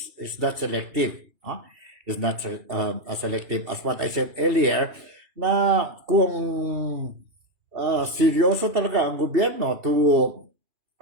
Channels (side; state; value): left; late; 2.7 ms